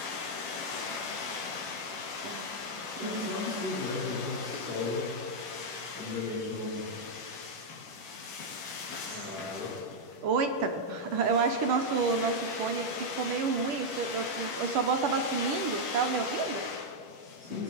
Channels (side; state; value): left; late; 10 ms